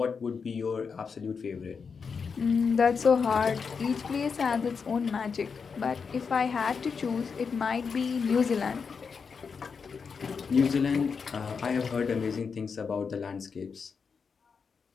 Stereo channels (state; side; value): quieter; right; 5.7 dB